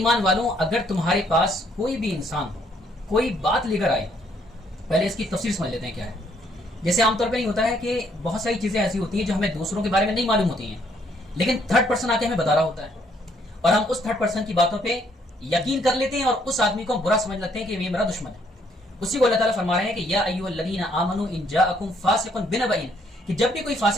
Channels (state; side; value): normal; both; correlation 0.68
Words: والوں، اگر تمہارے پاس کوئی بھی انسان کوئی بات لے کر آئے، پہلے اس کی تفسیر سمجھ لیتے ہیں کیا ہے۔ جیسے عام طور پہ نہیں ہوتا ہے کہ بہت ساری چیزیں ایسی ہوتی ہیں جو ہمیں دوسروں کے بارے میں نہیں معلوم ہوتی ہیں، لیکن تھرڈ پرسن آ کے ہمیں بتا رہا ہوتا ہے اور ہم اس تھرڈ پرسن کی باتوں پہ یقین کر لیتے ہیں اور اس آدمی کو ہم برا سمجھ لیتے ہیں کہ یہ میرا دشمن ہے۔ اسی کو اللہ تعالیٰ فرما رہے ہیں کہ یا ایھا الذین آمنوا ان جاءکم فاسق بنبأ، کہ جب بھی کوئی